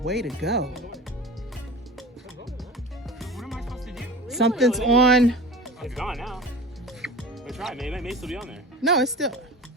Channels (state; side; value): normal; both; correlation 0.36